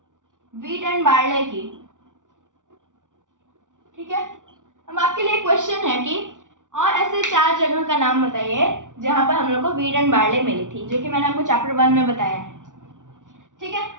वीट एंड बार्ले की। ठीक है, अब आपके लिए क्वेश्चन है कि और ऐसे 4 जगह का नाम बताइए जहां पर हम लोग को वीट एंड बार्ले मिली थी, जो कि मैंने आपको चैप्टर 1 में बताया है। ठीक है,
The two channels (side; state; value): left; late; 0.87 ms